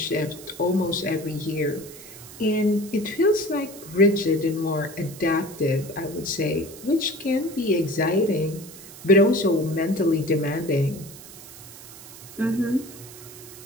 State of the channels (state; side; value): noise; right; hiss, 16 dB below the sound